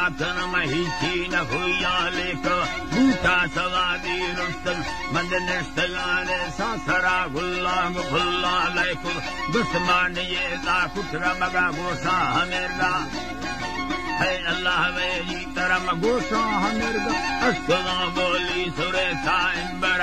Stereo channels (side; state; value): both; identical; correlation 1.00